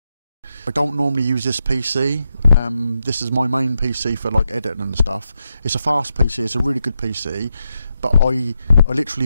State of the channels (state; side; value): inverted; both; correlation -0.84